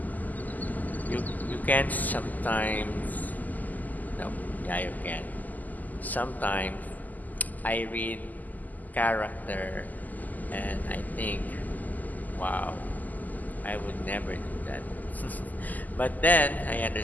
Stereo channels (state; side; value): late; right; 0.082 ms